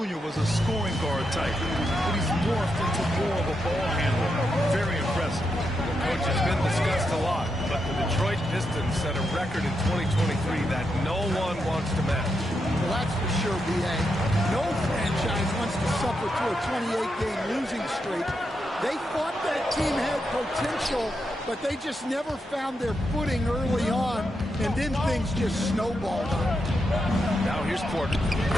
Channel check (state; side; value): normal; both; correlation 0.84